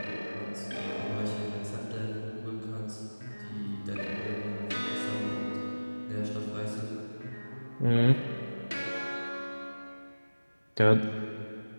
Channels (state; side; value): inverted; both; correlation -1.00